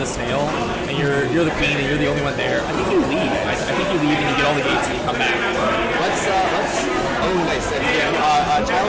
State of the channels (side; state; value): both; identical; correlation 1.00